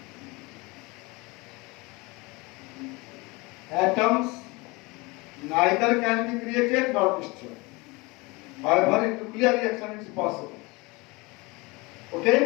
atoms neither can be created nor destroyed. However, in nuclear reaction it is possible.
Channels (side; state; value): right; quieter; 25.1 dB